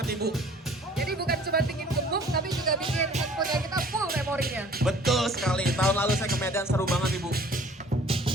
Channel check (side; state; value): both; normal; correlation 0.52